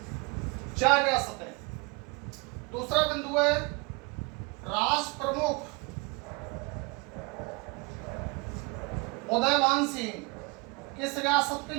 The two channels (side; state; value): left; quieter; 28.2 dB